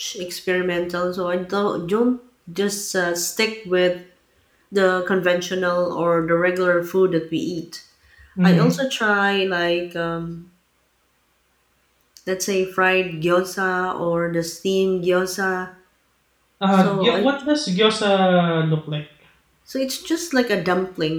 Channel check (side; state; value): both; identical; correlation 1.00